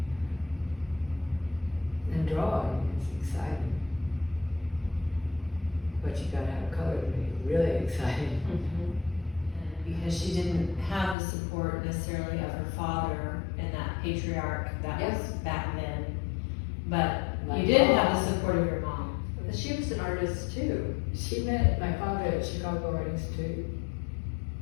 And drawing is exciting. But you gotta have color to make it really exciting. Because she didn't have the support necessarily of her father and that patriarch that was back then. But you did have the support of your mom. She was an artist too. She met my father at Chicago Art Institute,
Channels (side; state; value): right; drops out; at 11.2 s